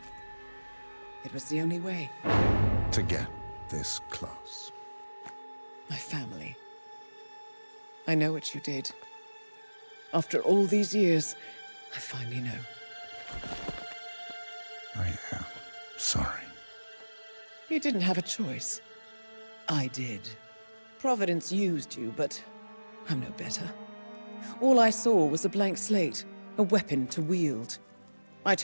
It was the only way. To get this close. My family. I know what you did. After all these years, I finally know. I am sorry. You didn't have a choice. I did. Providence used you, but I'm no better. All I saw was a blank slate, a weapon to wield. I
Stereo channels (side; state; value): both; inverted; correlation -1.00